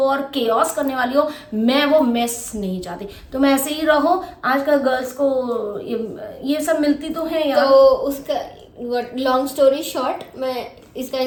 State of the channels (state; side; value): identical; both; correlation 1.00